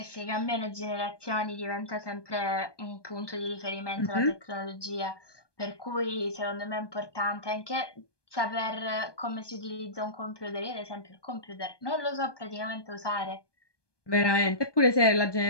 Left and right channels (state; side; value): late; right; 1.2 ms